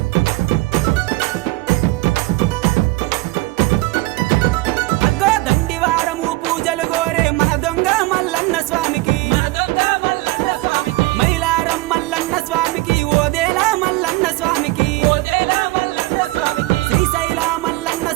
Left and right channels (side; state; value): left; quieter; 20.4 dB